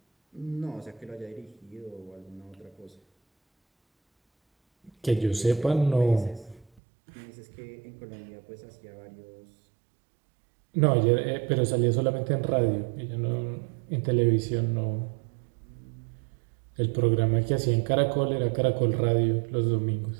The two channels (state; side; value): drops out; left; at 6.8 s